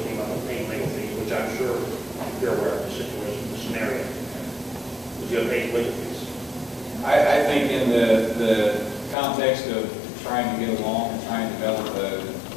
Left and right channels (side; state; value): right; drops out; at 9.2 s